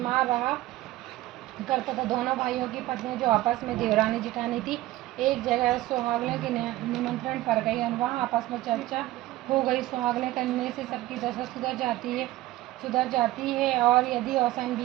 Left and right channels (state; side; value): quieter; left; 16.8 dB